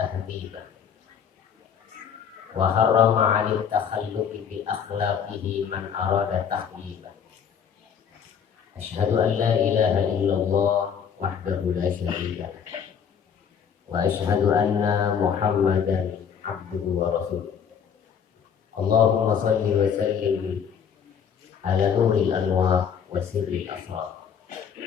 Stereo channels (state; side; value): quieter; right; 7.5 dB